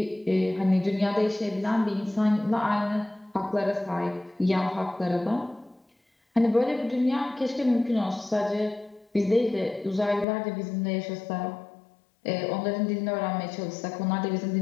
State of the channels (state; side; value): drops out; right; at 10.2 s